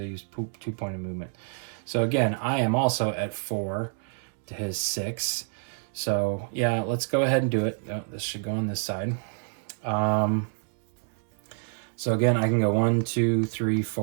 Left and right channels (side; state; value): left; silent; 60 dB below the other